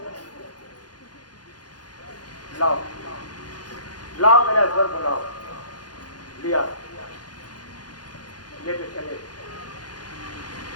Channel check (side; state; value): right; late; 0.69 ms